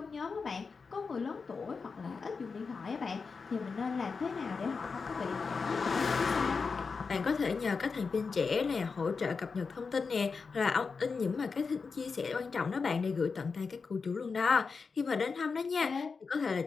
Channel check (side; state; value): right; quieter; 4.9 dB